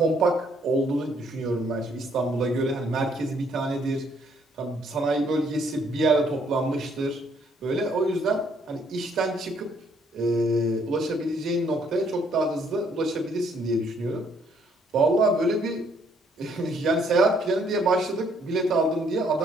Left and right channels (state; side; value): normal; both; correlation 0.67